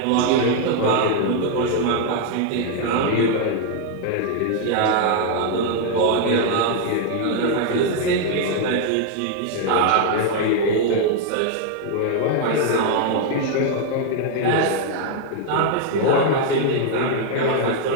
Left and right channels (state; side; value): different; both; correlation 0.00